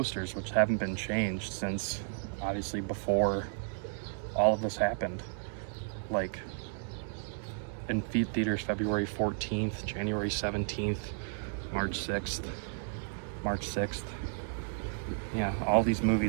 which haven't been changed since obviously before all of this happened. Like in theaters February 14th, January 17th, March 6th, March 6th. Yeah, all these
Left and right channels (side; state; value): left; silent; digital silence